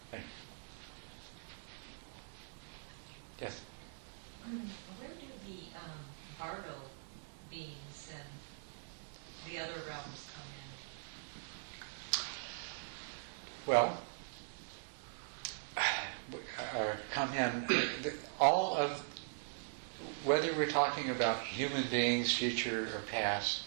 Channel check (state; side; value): silent; left; digital silence